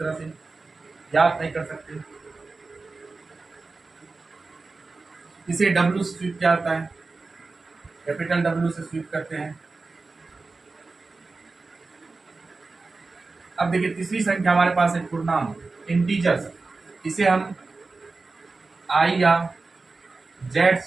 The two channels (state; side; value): quieter; left; 3.8 dB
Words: से ज्ञात नहीं कर सकते। इसे W से स्वीप किया जाता है, कैपिटल W से स्वीप करते हैं। अब देखिए तीसरी संख्या हमारे पास है पूर्णांक, इंटीजर्स। इसे हम I या Z